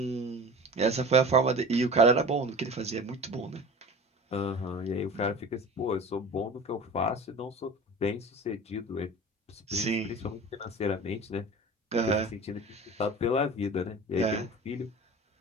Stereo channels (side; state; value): both; normal; correlation 0.36